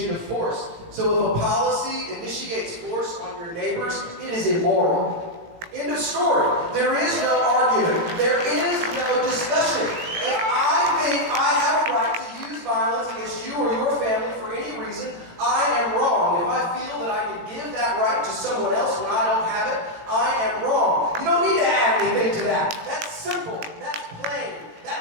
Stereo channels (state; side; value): late; left; 18 ms